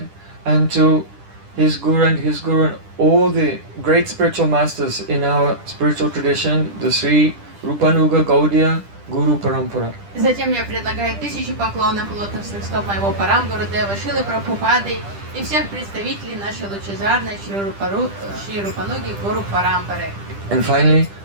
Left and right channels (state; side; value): late; left; 10 ms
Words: and to his Guru and all the great spiritual masters in our spiritual tradition, the Sri Rupanuga Gaudiya Guru Parampara. Затем я предлагаю 1000 поклонов у лотосных стоп моего Парам Гурудева Шилы Прабхупады и всех представителей нашей лучезарной Шри Рупануги Гуру Парампары. And finally,